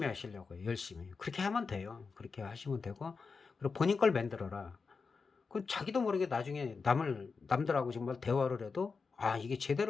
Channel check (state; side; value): quieter; right; 4.8 dB